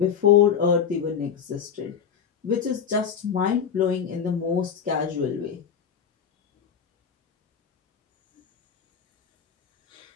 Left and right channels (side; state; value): right; quieter; 7.4 dB